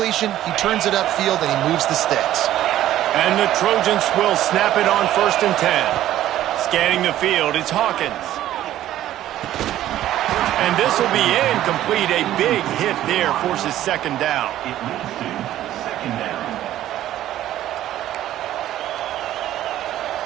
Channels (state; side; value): quieter; left; 13.1 dB